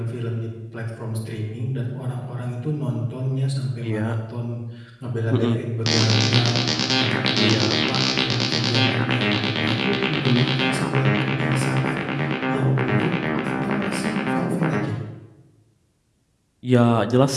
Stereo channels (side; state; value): both; identical; correlation 1.00